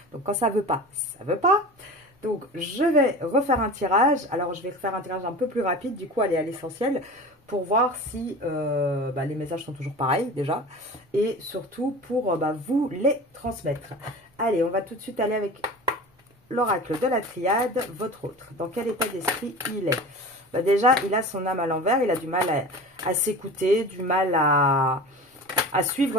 Donc quand ça veut pas, ça veut pas. Donc je vais refaire un tirage. Alors je vais faire un tirage un peu plus rapide, du coup aller à l'essentiel pour voir si les messages sont toujours pareils déjà. Et surtout pour vous les transmettre. Allez, on va tout de suite aller avec l'oracle de la triade, votre autre. Dans quel état d'esprit il est? Déjà, il a son âme à l'envers, il a du mal à s'écouter, du mal à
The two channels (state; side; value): normal; both; correlation 0.34